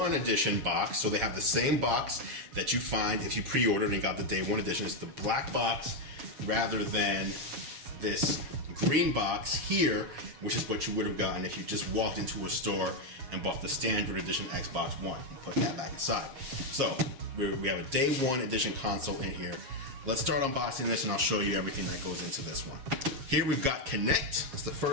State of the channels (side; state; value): left; late; 7.3 ms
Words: Edition box. So they have the same box that you find if you pre-ordered and got the Day One Edition. It's the black box rather than this green box here, which is what you would have gotten if you just walked into a store and bought the standard edition Xbox One. Put that back aside. So we have a Day One Edition console in here. Let's start unboxing this and I'll show you everything that goes into this one. Here we've got Kinect. That's the